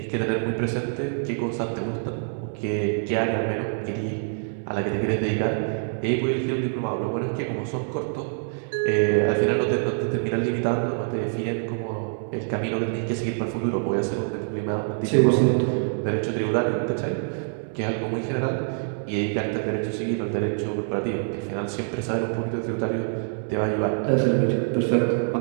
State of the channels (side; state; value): left; silent; 61 dB below the other